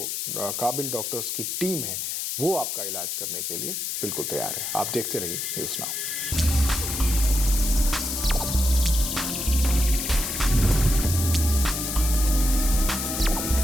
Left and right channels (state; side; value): noise; left; hiss, 3 dB below the sound